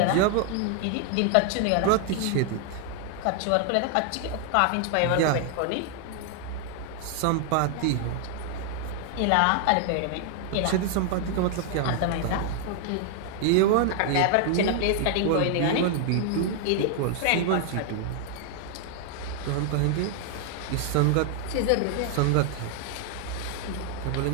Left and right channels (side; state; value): both; different; correlation 0.00